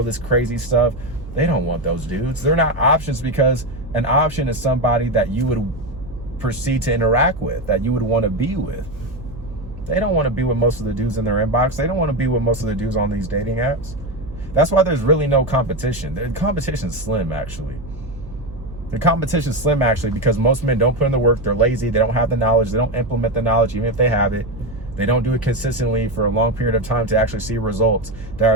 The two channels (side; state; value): right; noise; hum, 15 dB below the sound